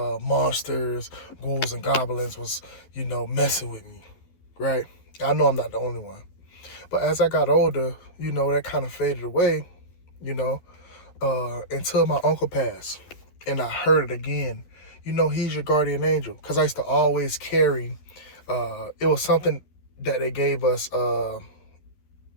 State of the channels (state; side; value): late; right; 12 ms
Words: monsters, ghouls, and goblins was, messing with me, right? I know I'm not the only one. But as I got older, that kind of faded away, until my uncle passed. And I heard it again. He's your guardian angel. Because I used to always carry, it was something that they gave us